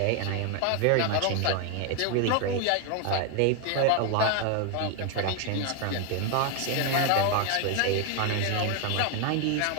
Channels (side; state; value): both; different; correlation 0.01